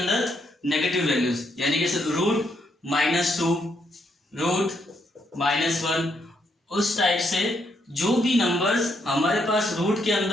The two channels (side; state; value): both; normal; correlation 0.76